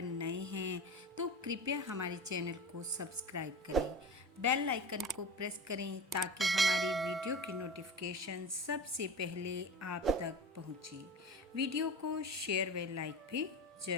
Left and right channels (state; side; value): normal; both; correlation 0.30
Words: नए हैं तो कृपया हमारे चैनल को सब्सक्राइब करें, बेल आइकन को प्रेस करें ताकि हमारी वीडियो की नोटिफिकेशन सबसे पहले आप तक पहुंचे। वीडियो को शेयर व लाइक भी